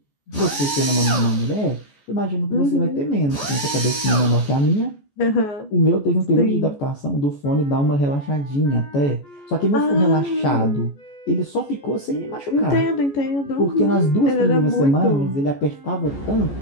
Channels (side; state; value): right; late; 14 ms